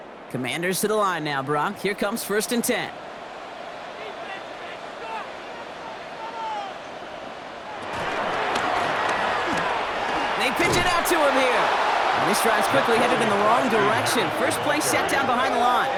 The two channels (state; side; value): identical; both; correlation 1.00